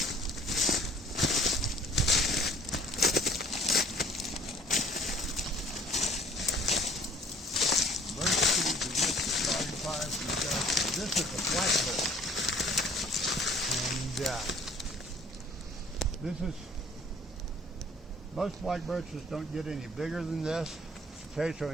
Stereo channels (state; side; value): normal; both; correlation 0.54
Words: this is a blackbird. And this is, most black birches don't get any bigger than this.